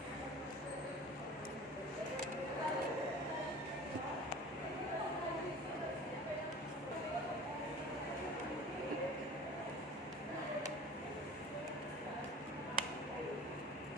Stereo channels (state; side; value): normal; both; correlation 0.40